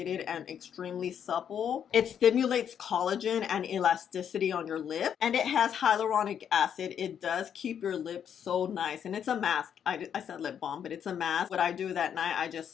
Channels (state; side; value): quieter; right; 8.6 dB